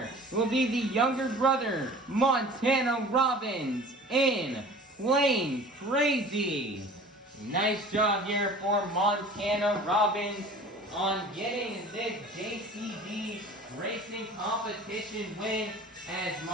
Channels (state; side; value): normal; both; correlation 0.43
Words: will be the younger brother, Montana Robbins in Plain Krazy. Nice job here for Montana Robbins on getting this JCB Racing Competition win, as